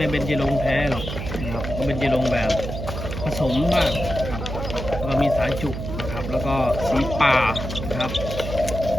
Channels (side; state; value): right; noise; hum, 6 dB below the sound